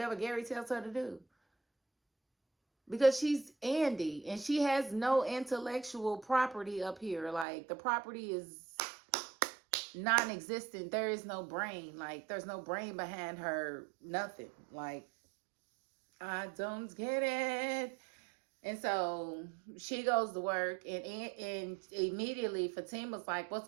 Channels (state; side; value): drops out; left; at 7.5 s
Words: Gary tells her to do. Because she's Andy, and she has no intellectual property up here. Like, the property is non-existent. There is no brain. Like, there's no brain behind her. Nothing. Like, I don't get it. And so she goes to work, and immediately Fatima's like, "What's